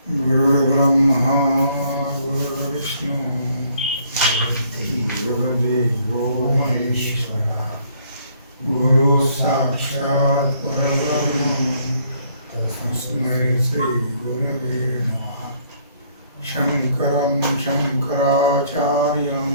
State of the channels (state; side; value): inverted; both; correlation -0.64